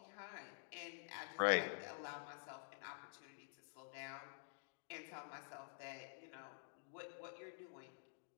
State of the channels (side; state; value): right; silent; digital silence